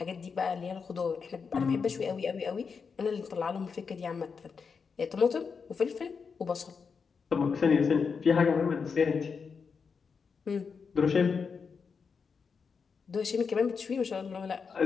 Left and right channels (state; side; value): quieter; right; 5.6 dB